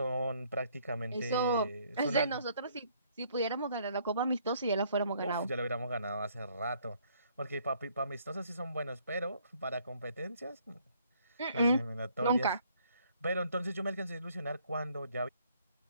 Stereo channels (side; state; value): both; inverted; correlation -0.65